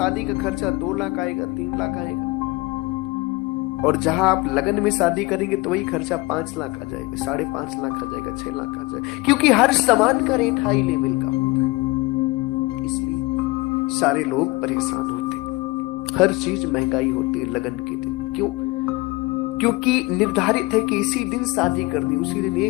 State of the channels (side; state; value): right; quieter; 22.0 dB